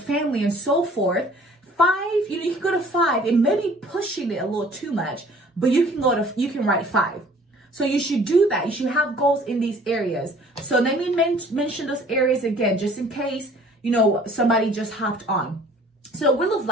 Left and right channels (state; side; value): normal; both; correlation 0.53